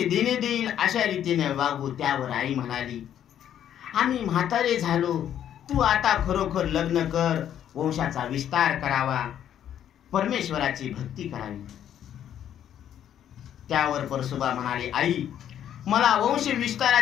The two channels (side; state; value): right; quieter; 10.2 dB